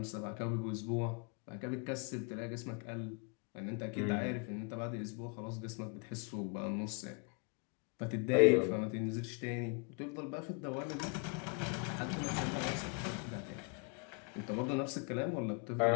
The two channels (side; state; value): right; quieter; 33.0 dB